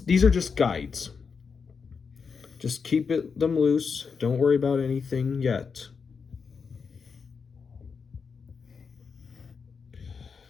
are just guides. Just keep them loose. Don't worry about anything yet.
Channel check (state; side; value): quieter; right; 5.6 dB